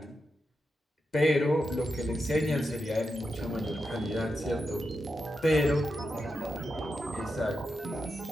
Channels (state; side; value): normal; both; correlation 0.87